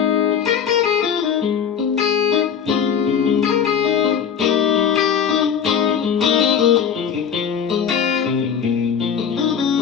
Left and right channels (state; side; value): quieter; right; 7.6 dB